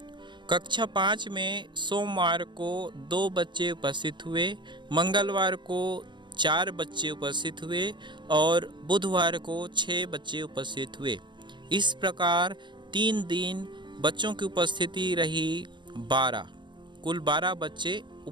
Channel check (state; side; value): late; left; 0.23 ms